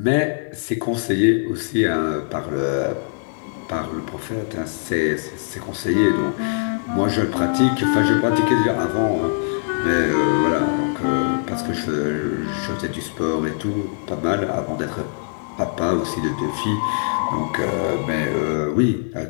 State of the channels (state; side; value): silent; right; digital silence